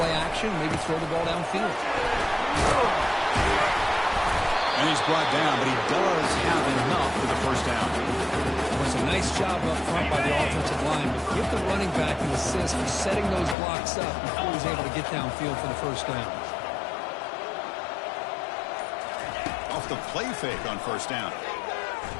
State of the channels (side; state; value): right; drops out; at 13.6 s